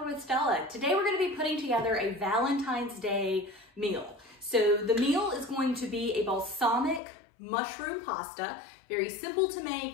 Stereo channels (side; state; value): right; drops out; at 7.0 s